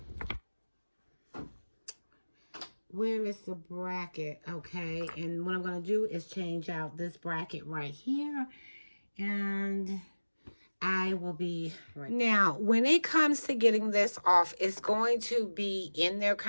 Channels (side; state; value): both; inverted; correlation -1.00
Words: Where is the bracket? Okay, and what I'm going to do is change out this bracket right here. And I will be right back. Now, when it comes to getting this off, it's going to be in there